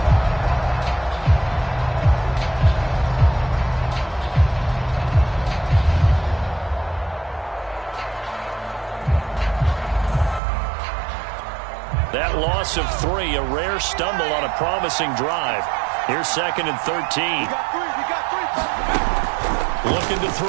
That loss of 3, a rare stumble on a promising drive. Here's 2nd and 13. Looking to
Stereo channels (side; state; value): left; drops out; at 10.4 s